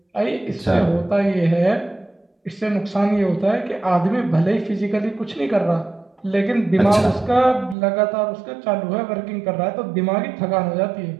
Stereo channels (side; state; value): left; drops out; at 7.8 s